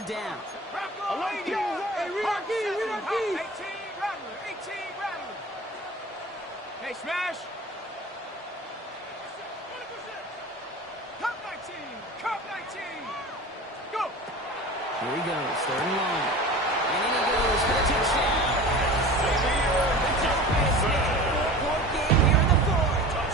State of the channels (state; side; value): normal; both; correlation 0.37